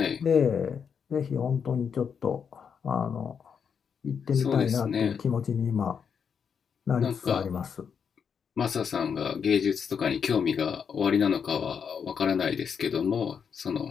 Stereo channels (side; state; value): right; quieter; 6.9 dB